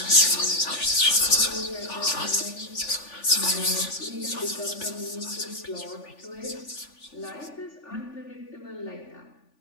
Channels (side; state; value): right; late; 3.4 ms